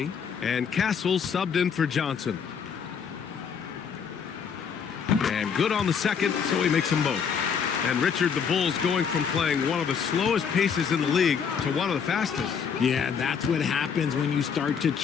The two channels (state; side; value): quieter; right; 6.8 dB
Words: and Castle subbed in for Johnson. And good on the second, so he makes them both. And Richard, the Bulls going from playing one of the slowest paces in the league to one of the fastest. Yeah, that's what happens when you start to